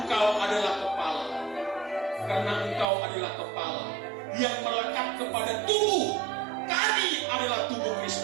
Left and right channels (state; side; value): drops out; left; at 2.9 s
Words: adalah kepala. Karena Engkau adalah kepala yang melekat kepada tubuh. Kami adalah tubuh